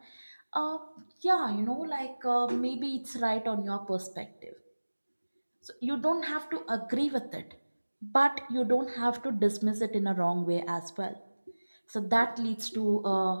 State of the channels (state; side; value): inverted; both; correlation -1.00